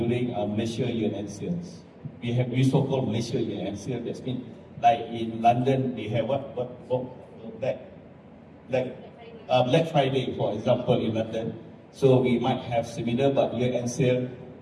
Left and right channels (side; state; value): both; identical; correlation 1.00